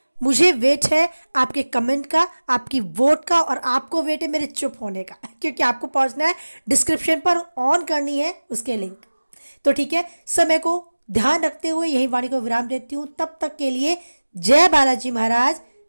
मुझे वेट है आपके कमेंट का, आपकी वोट का, और आपको वेट है मेरे चुप होने का, क्योंकि आपको पहुंचना है डिस्क्रिप्शन पर, ऑन करनी है उसके लिंक। तो ठीक है, समय को ध्यान रखते हुए यही वाणी को विराम देती हूं। तब तक के लिए जय बालाजी महाराज,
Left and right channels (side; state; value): both; inverted; correlation -1.00